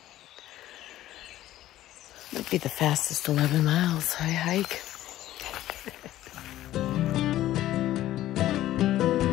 Might be the fastest 11 miles I hike.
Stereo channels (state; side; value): quieter; right; 14.1 dB